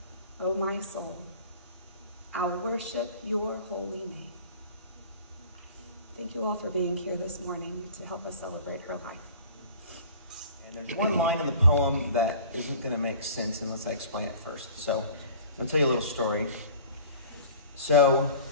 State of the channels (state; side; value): inverted; both; correlation -0.44